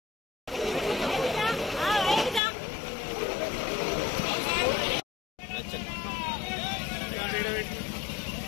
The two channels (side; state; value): right; drops out; at 2.4 s